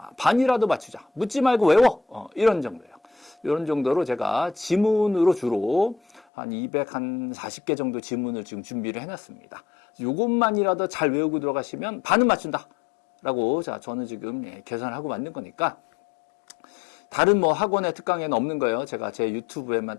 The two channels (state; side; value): drops out; right; at 6.2 s